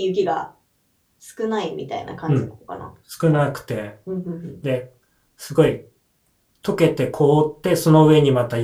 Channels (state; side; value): identical; both; correlation 1.00